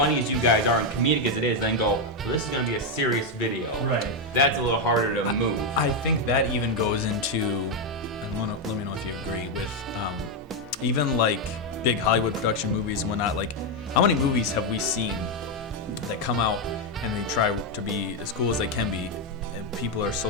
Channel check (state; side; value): normal; both; correlation 0.03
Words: as you guys are and comedic as it is, then go, well, this is gonna be a serious video. Right. That's a little harder to move. I think that even goes into, and let me know if you agree with, even like big Hollywood production movies and whatnot. Like, how many movies have we seen that come out and they try to be as cool as they can be, and people are so